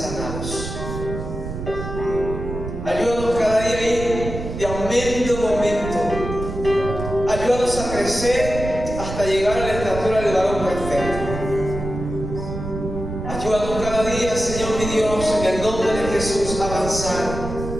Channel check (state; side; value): noise; right; rumble, 7 dB below the sound